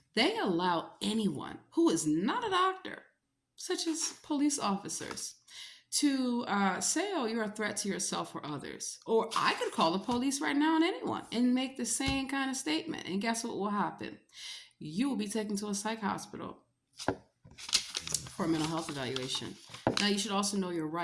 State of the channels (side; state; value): both; identical; correlation 1.00